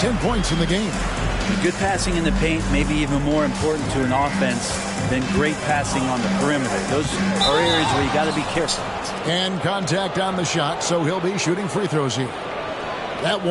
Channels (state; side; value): identical; both; correlation 1.00